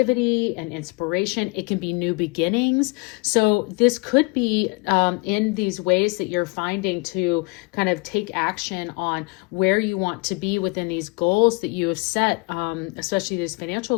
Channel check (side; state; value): right; quieter; 28.4 dB